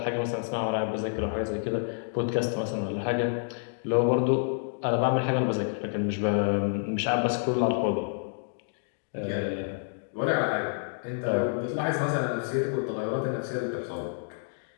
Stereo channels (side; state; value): right; silent; digital silence